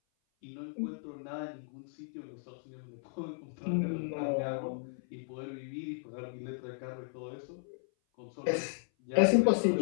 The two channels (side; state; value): right; silent; 54 dB below the other